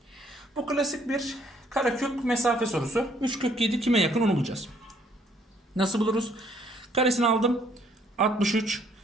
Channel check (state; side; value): normal; both; correlation 0.64